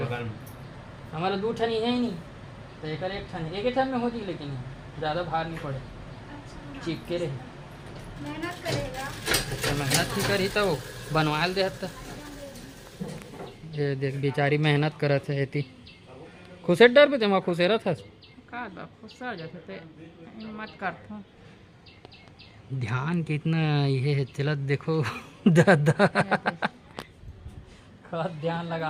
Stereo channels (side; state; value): both; identical; correlation 1.00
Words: हमारा दो ठन है नहीं तो एक ठन एक ठन में हो जी, लेकिन ज़्यादा भार नहीं पड़े चिपके रहे। मेहनत करेगा तो मेहनत ही करी तो बनवा दे तो ये देख बेचारी मेहनत करत है इतनी खुशे डर पे तुम खुशे रह का बा खुश हो जाते ते मत करथो ध्यान कितना ये है चलत देखो दादा खत ध्यान